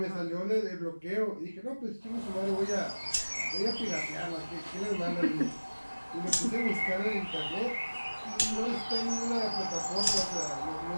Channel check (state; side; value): inverted; both; correlation -1.00